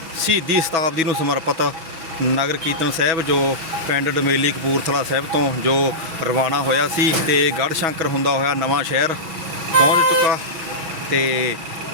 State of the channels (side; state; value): left; late; 6.2 ms